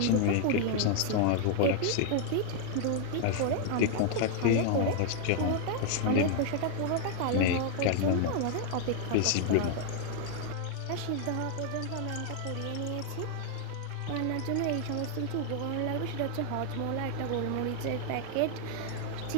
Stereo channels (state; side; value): different; both; correlation 0.00